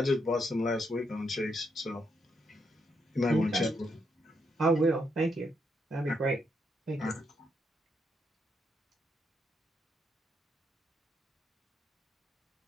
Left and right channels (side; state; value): both; normal; correlation 0.78